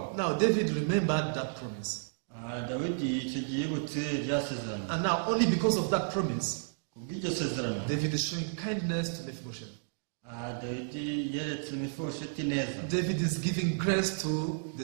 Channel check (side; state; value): left; silent; digital silence